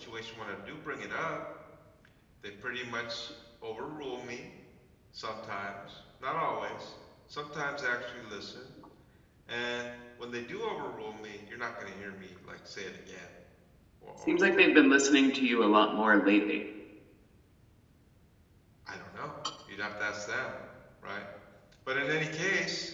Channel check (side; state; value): both; identical; correlation 1.00